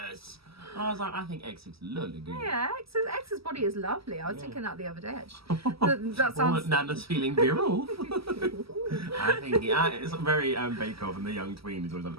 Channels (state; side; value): late; left; 0.76 ms